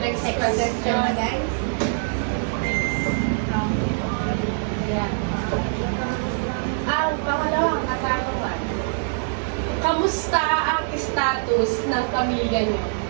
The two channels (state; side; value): silent; left; 56 dB below the other